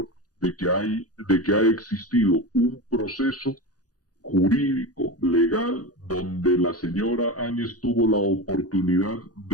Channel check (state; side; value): late; right; 0.68 ms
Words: de que ha existido un proceso jurídico, legal, donde la señora Áñez tuvo la oportunidad